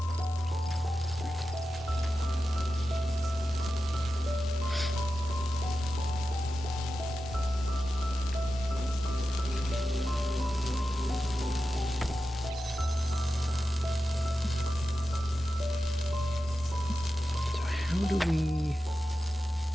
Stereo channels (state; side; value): normal; both; correlation 0.92